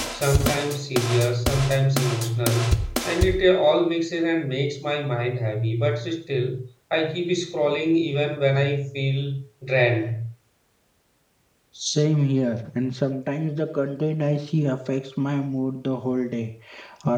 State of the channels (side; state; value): both; identical; correlation 1.00